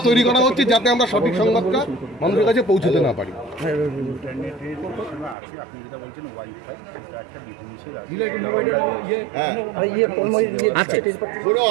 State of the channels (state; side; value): drops out; left; at 5.4 s